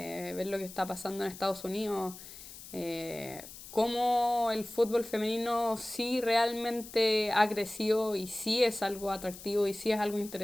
lo que está pasando en Estados Unidos, cómo el fútbol femenino sí realmente ha crecido y sí es algo atractivo y sí es algo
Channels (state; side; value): noise; left; hiss, 15 dB below the sound